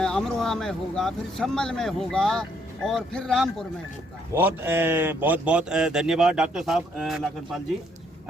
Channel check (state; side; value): normal; both; correlation 0.69